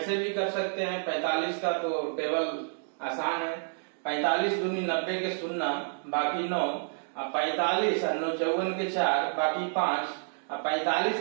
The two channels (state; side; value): silent; left; digital silence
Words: भी कर सकते हैं। 45 का तो टेबल आसान है, 45 दूनी 90 के 0 बाकी 9, अब 45 और 9 54 के 4 बाकी 5, अब